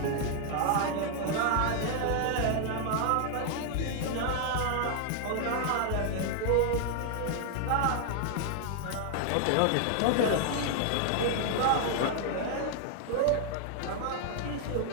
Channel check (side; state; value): both; different; correlation -0.01